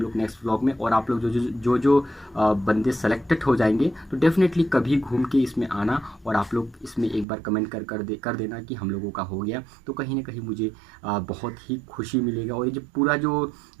लोग नेक्स्ट व्लॉग में। और आप लोग जो बंदे सेलेक्टेड हो जाएंगे, तो डेफिनेटली कभी घूम के इसमें आना, और आप लोग इसमें एक बार कमेंट कर देना कि हम लोगों का हो गया। तो कहीं ना कहीं मुझे बहुत ही खुशी मिलेगा। और ये जो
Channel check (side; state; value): left; drops out; at 7.2 s